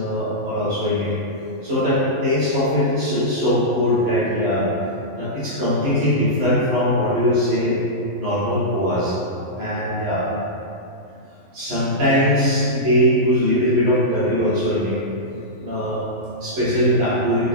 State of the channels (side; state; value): left; late; 11 ms